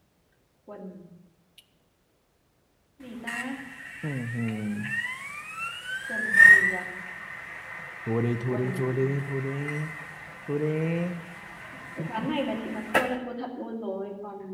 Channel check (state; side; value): identical; both; correlation 1.00